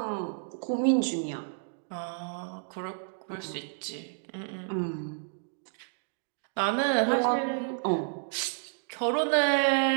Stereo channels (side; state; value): left; silent; 58 dB below the other